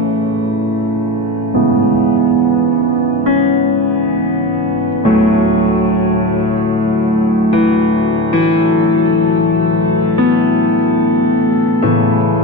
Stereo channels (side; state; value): both; normal; correlation 0.26